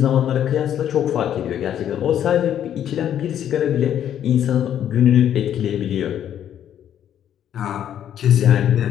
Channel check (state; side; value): quieter; right; 10.2 dB